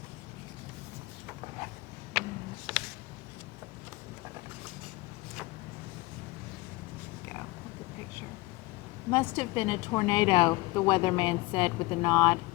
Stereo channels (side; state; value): right; quieter; 21.5 dB